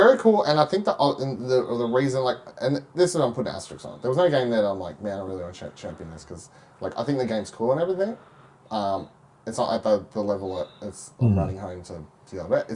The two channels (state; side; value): identical; both; correlation 1.00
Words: cool, and I think that the reason, like, and this is I'm putting asterisks on it. There was no game that I'm like, man, I really want to champion this because, like, I think the game's cool and everything. It's not at the level that it's running home to the other.